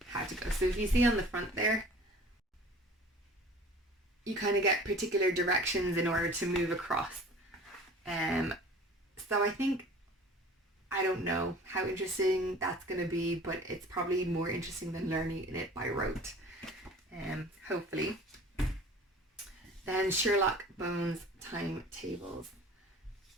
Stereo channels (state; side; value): normal; both; correlation 0.45